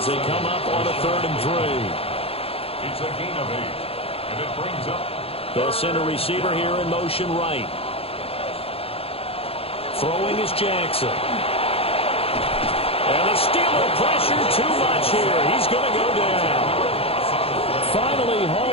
they come up on a 3rd and 3. It's a gain of 8. And it brings up. They'll send a receiver here in motion right. Throwing is Jackson. And the Steeler pressure too much here. He's going to go down. Finally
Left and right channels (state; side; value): late; right; 0.28 ms